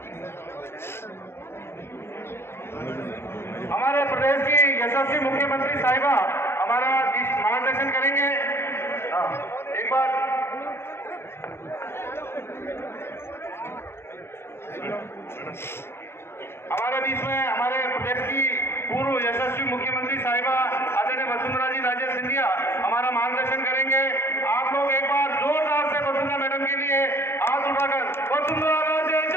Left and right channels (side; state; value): right; late; 0.12 ms